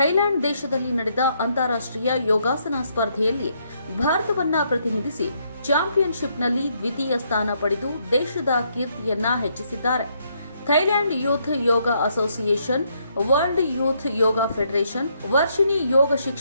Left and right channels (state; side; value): inverted; both; correlation -0.74